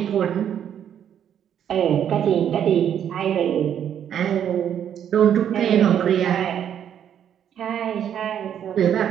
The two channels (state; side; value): quieter; left; 9.4 dB